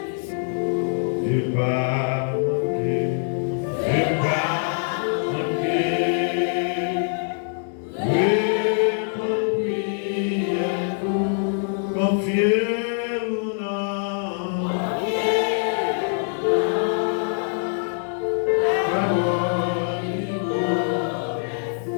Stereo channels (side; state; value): right; silent; 63 dB below the other